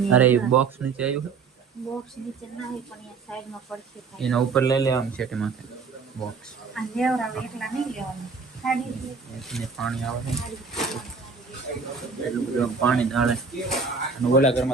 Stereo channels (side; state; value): left; quieter; 5.0 dB